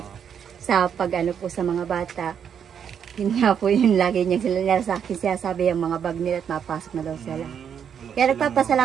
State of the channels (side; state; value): left; quieter; 8.0 dB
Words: sa pag-ano po sa mga bata. Yun nga po yun lagi niya sila sa akin siya sabi yung mga bag nila at mapasok na daw sila. Kaya